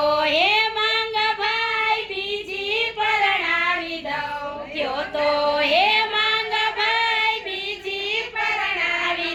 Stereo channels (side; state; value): both; identical; correlation 1.00